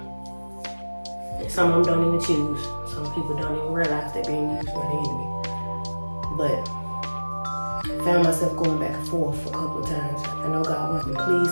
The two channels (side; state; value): both; inverted; correlation -1.00